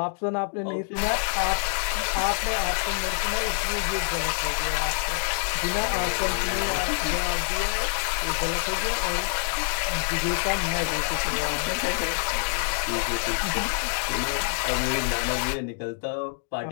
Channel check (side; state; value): right; silent; digital silence